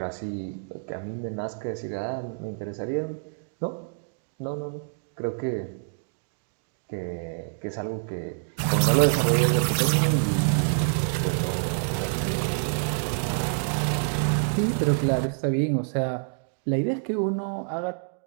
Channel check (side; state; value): left; silent; digital silence